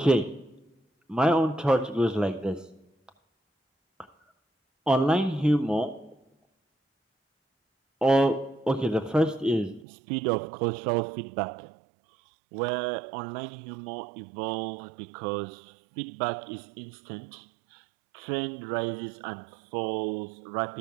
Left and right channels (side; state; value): left; drops out; at 9.9 s